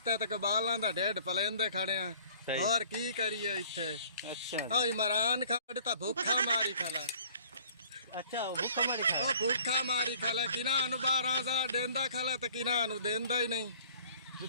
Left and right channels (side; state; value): both; inverted; correlation -0.53